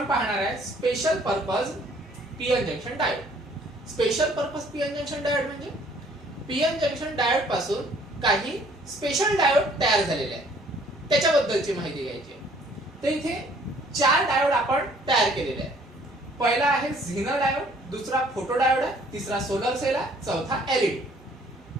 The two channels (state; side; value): normal; both; correlation 0.59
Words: पाहणार आहे special purpose PN junction diode. Special purpose PN junction diode म्हणजे पीएन जंक्शन डायोड पासून काही स्पेशल डायोड तयार झालेले आहेत त्याच्याबद्दलची माहिती घ्यायची आहे. तर इथे 4 डायोड आपण तयार केलेले आहेत. पहिला आहे झिनर डायोड, दुसरा फोटो डायोड आहे, तिसरा सोलर सेल आहे, चौथा एलईडी.